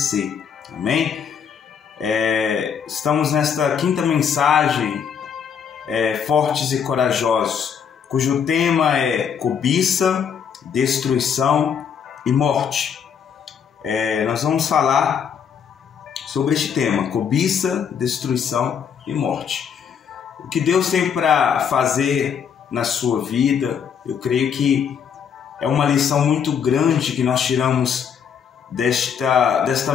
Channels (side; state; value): right; quieter; 7.4 dB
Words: amém? Estamos nesta quinta mensagem, Fortes e Corajosos, cujo tema é cobiça, destruição e morte. Nós vamos falar sobre este tema, cobiça, destruição e morte. O que Deus tem para fazer na sua vida, eu creio que é uma lição muito grande que nós tiramos desta